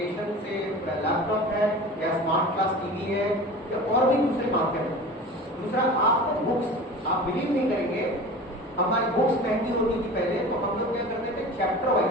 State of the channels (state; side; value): normal; both; correlation 0.36